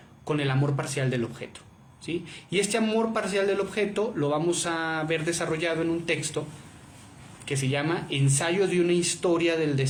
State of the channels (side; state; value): both; identical; correlation 1.00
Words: Con el amor parcial del objeto, ¿sí? Y este amor parcial del objeto lo vamos a ver desarrollado en un texto que se llama Ensayo de una historia del